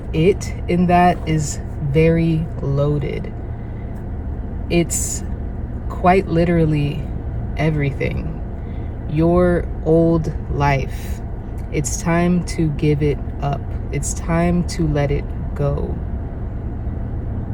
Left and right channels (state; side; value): identical; both; correlation 1.00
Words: it in that is very loaded. It's quite literally everything. Your old life. It's time to give it up. It's time to let it go